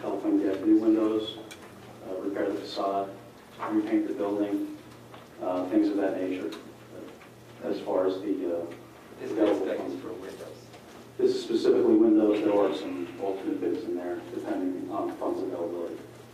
help them get new windows, repair the facade, repaint the building, things of that nature. As far as the This available is funds. for windows. This is specifically windows. There are some alternate bids in there, depending on funds availability.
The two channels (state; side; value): identical; both; correlation 1.00